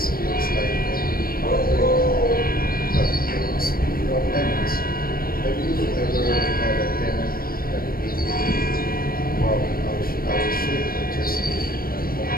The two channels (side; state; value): right; late; 0.43 ms